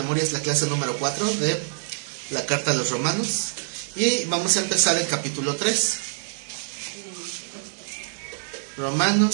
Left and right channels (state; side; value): silent; left; digital silence